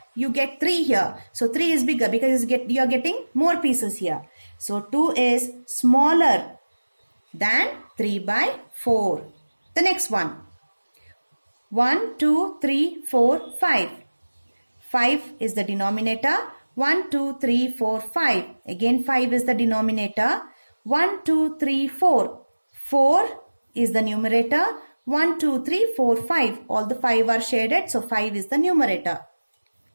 you get 3 here. So 3 is bigger because you are getting more pieces here. So 2 is smaller than 3 by 4. The next one. 1, 2, 3, 4, 5. 5 is the denominator. 1, 2, 3, 4, 5. Again 5 is the denominator. 1, 2, 3, 4. 4 is the numerator. 1, 2, 3, 4, 5. All the 5 are shaded. So 5 is the numerator.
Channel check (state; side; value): inverted; both; correlation -1.00